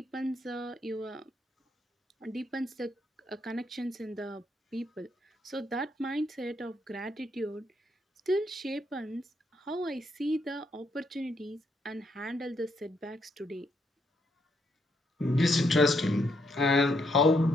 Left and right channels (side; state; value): both; normal; correlation 0.75